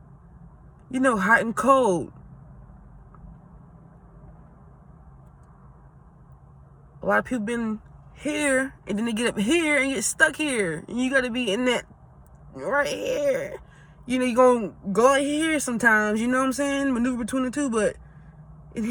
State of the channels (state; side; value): identical; both; correlation 1.00